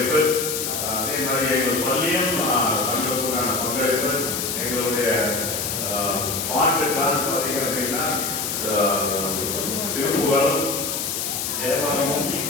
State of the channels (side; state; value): left; noise; hiss, 2 dB below the sound